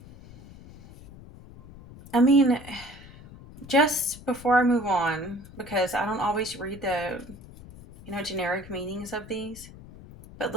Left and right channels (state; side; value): noise; left; rumble, 18 dB below the sound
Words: I mean, just before I move on, because I don't always read the, generic meanings of these, but